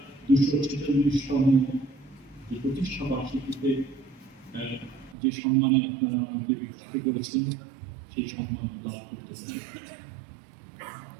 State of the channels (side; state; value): left; drops out; at 5.2 s